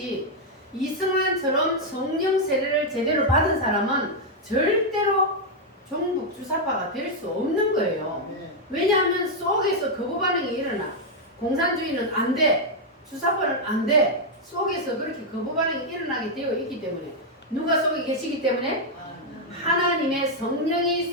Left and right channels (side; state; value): both; normal; correlation -0.01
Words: 이승만처럼 성령 세례를 제대로 받은 사람은 절대로 종북 주사파가 될 수 없는 거예요. 왜냐하면 속에서 거부 반응이 일어나. 공산주의는 안 돼. 주사파는 안 돼. 속에서 그렇게 거부 반응이 일어나게 되어 있기 때문에 누가 속에 계시기 때문에? 하나님의 성령이